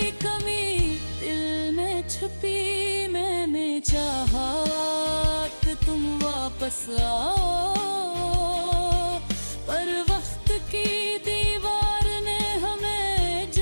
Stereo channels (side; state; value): both; inverted; correlation -1.00